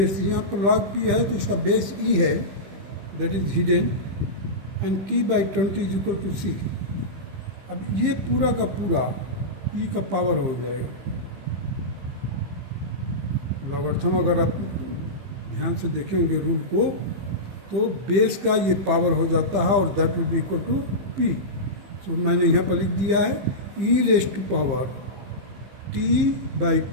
यहाँ पर लॉग पी है तो इसका बेस ई है, that is hidden, and T by 20 is equal to C. अब ये पूरा का पूरा ई का पावर हो जाएगा. लॉगरिथम अगर आप ध्यान से देखेंगे रूल को तो बेस का ये पावर हो जाता है और that will be equal to P. So मैंने यहाँ पर लिख दिया है E raised to power T by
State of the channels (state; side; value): late; left; 15 ms